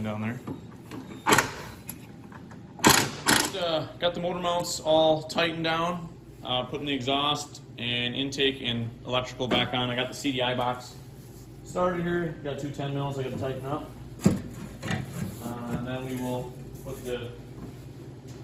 down there. Got the motor mounts all tightened down, putting the exhaust and intake and electrical back on. I got the CDI box started here. Got 2 10 mils I got to tighten up. And then we will put the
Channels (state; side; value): identical; both; correlation 1.00